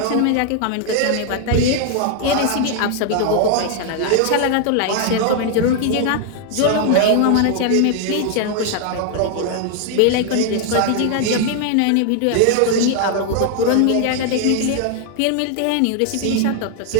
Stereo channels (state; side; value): different; both; correlation 0.00